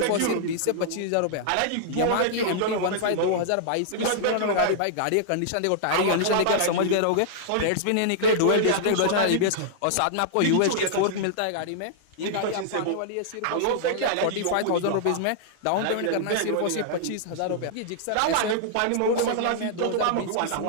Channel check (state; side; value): different; both; correlation -0.01